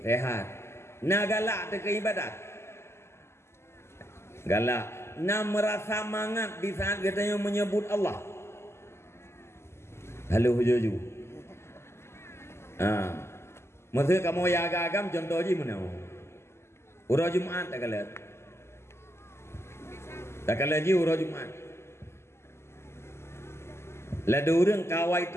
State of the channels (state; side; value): late; right; 0.12 ms